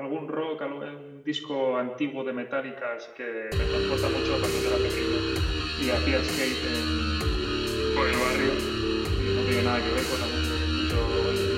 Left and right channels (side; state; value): both; identical; correlation 1.00